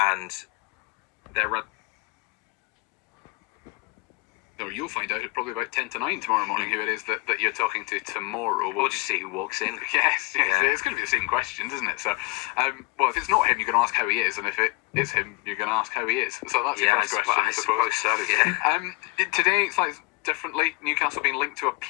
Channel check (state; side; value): quieter; right; 24.3 dB